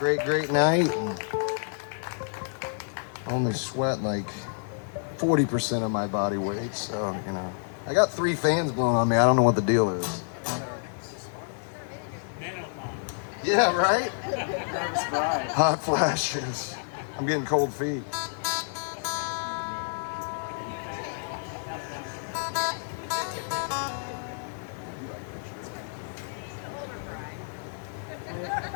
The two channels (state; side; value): silent; right; digital silence